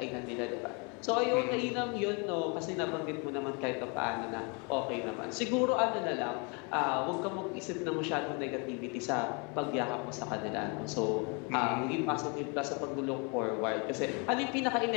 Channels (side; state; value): right; quieter; 33.3 dB